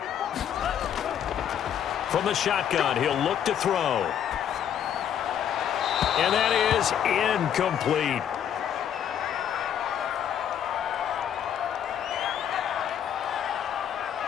From the shotgun, he'll look to throw. And that is incomplete.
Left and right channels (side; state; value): right; quieter; 9.3 dB